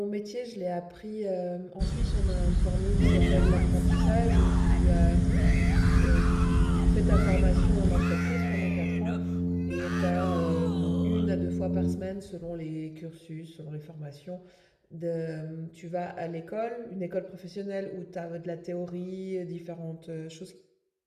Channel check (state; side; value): identical; both; correlation 1.00